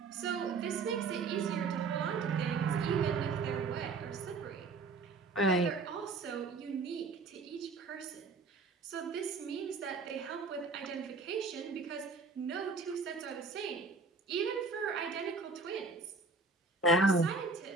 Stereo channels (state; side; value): quieter; left; 4.0 dB